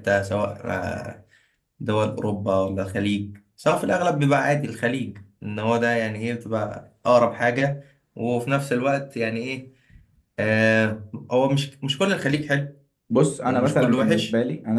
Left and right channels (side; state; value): both; identical; correlation 1.00